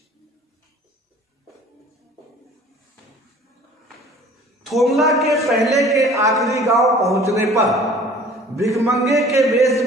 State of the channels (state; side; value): normal; both; correlation 0.49